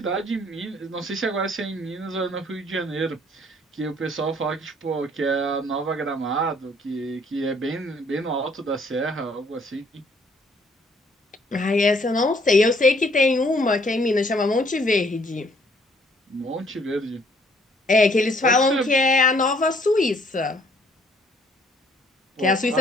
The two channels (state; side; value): normal; both; correlation 0.63